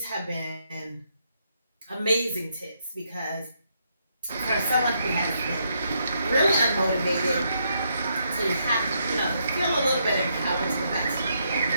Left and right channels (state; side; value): inverted; both; correlation -0.77